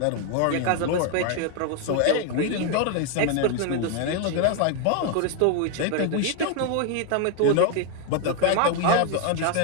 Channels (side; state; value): both; different; correlation 0.00